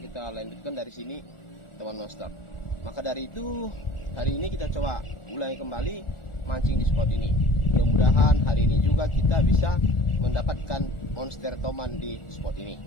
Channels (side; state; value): right; late; 1.4 ms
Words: lanjutkan dari sini teman monster. Maka dari itu hari ini kita coba ulangi kembali mancing di spot ini. Mudah-mudahan hari ini juga kita bisa mendapatkan monster toman di spot ini.